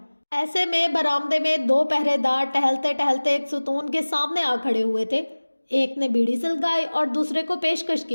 ایسے میں برآمدے میں 2 پہرے دار ٹہلتے ٹہلتے ایک ستون کے سامنے آ کھڑے ہوئے تھے۔ ایک نے بیڑی سلگائی اور دوسرے کو پیشکش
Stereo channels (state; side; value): inverted; both; correlation -1.00